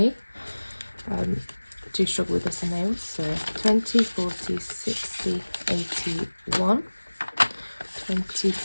Do struggle with this in nails, so 20, 40, 60, 81. 20,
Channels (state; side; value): inverted; both; correlation -1.00